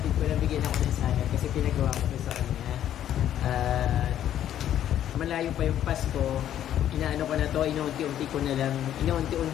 ko na bigyan ako ng salad kasi pinagawa ko sa kanya. Malayo pa yung Pasko, inaano ko na to, inuunti-unti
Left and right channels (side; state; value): right; quieter; 11.1 dB